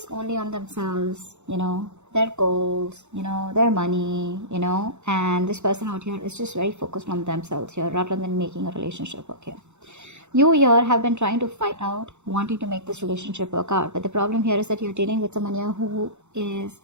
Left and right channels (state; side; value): late; left; 0.83 ms